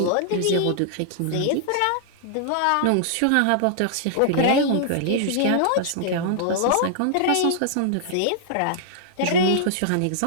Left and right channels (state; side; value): different; both; correlation -0.01